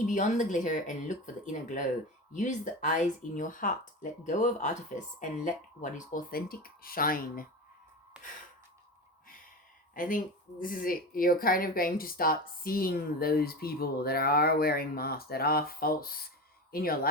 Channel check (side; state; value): both; normal; correlation 0.25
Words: beyond the glitter and look for the inner glow. Use the eyes in your heart. Let go of artifice and let what is authentic shine. I think this is it. You're kind of going to start seeing those people that are wearing masks, that are false in your